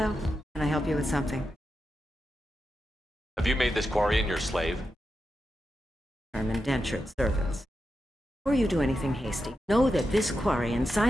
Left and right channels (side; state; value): both; normal; correlation 0.89